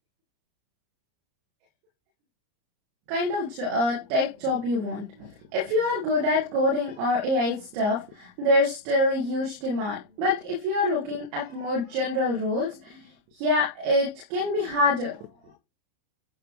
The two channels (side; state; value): left; late; 34 ms